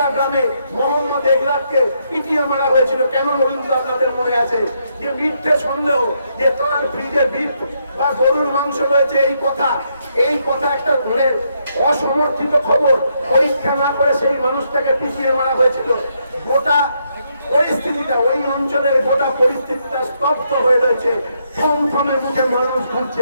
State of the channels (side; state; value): both; inverted; correlation -0.77